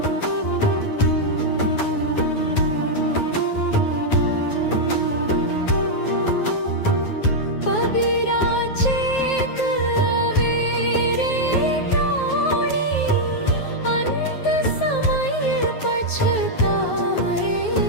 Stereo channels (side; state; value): right; late; 9.4 ms